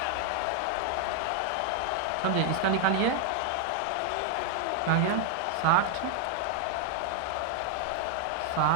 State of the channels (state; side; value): different; both; correlation 0.00